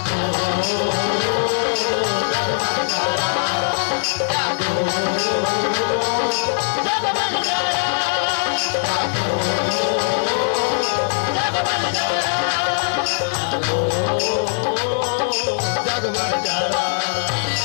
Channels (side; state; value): right; silent; digital silence